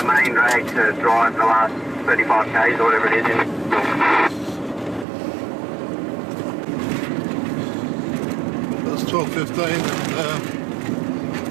main drag to drive the last 35 k's or whatever it is. It's 12:15 and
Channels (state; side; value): drops out; left; at 5.1 s